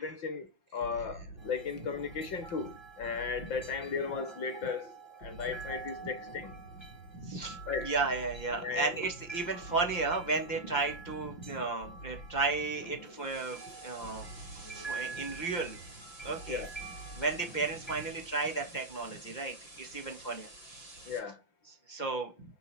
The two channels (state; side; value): late; right; 5.8 ms